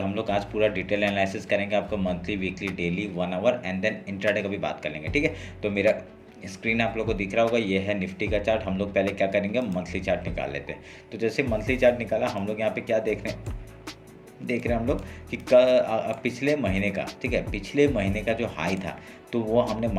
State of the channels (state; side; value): identical; both; correlation 1.00